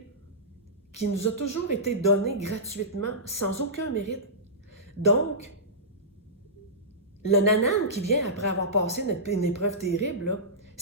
donné gratuitement, sans aucun mérite. Donc, le nanan qui vient après avoir passé une épreuve terrible,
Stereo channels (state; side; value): normal; both; correlation -0.17